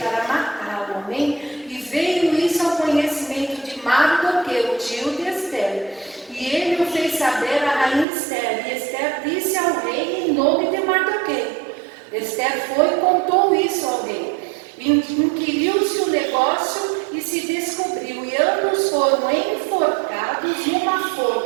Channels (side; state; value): left; drops out; at 8.1 s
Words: matá-lo, amém? E veio isso ao conhecimento de Mardoqueu, tio de Esther. E ele o fez saber a rainha Esther, e Esther disse ao rei em nome de Mardoqueu. Esther foi e contou isso ao rei. Inquiriu-se o negócio e se descobriu, e ambos foram enforcados numa